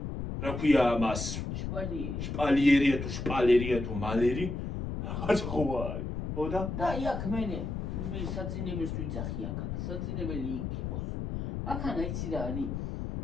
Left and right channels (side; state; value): left; noise; rumble, 4 dB below the sound